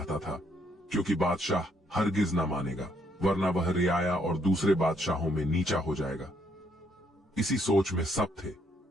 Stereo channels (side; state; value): both; normal; correlation 0.71